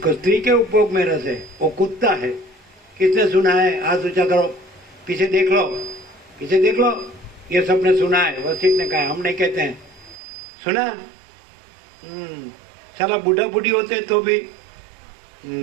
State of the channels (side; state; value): left; drops out; at 10.2 s